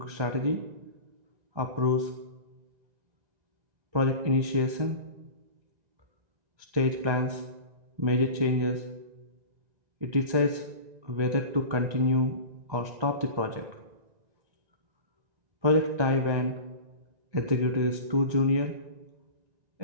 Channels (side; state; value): left; late; 1.9 ms